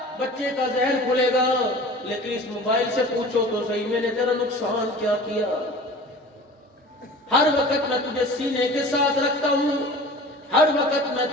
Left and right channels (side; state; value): both; normal; correlation 0.40